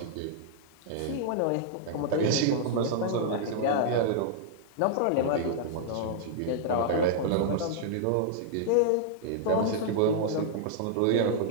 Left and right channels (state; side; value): different; both; correlation -0.01